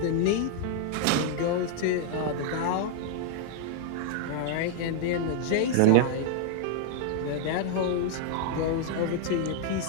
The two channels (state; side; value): different; both; correlation 0.00